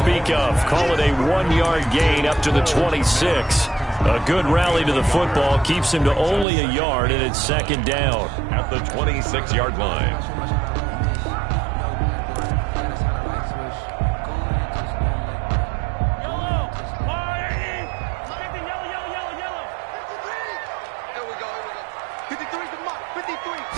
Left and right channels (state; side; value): drops out; left; at 6.5 s